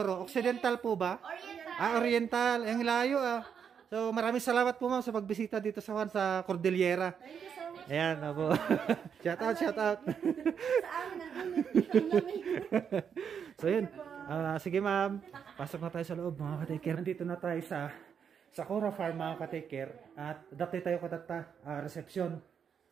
Occidental po ba? Oriental. Oriental. Ang layo So maraming salamat po ma'am sa pagbisita dito sa Cordillera. Thank you so much. Ayan po. Shout out. Sa amin So yun. Sige ma'am. Pasok na tayo sa loob mga ka-taker. Nandito na tayo sa Sakura Farm mga ka-taker. At dati tayo katata reception.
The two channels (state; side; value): quieter; left; 7.4 dB